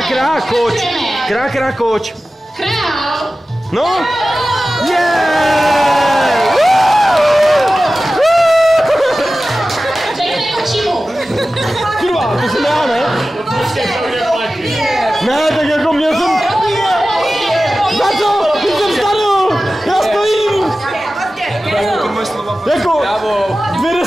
Krá, koč. Krá, koč. Král. No. Řekne kočímu. Kurva, to jsem já, ne? Ne, tak jako měl jsem... Za co? Teď jsem starou! Já stojím! Jako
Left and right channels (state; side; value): normal; both; correlation 0.95